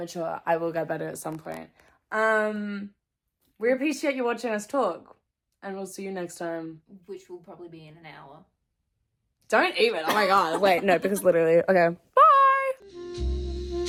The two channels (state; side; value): identical; both; correlation 1.00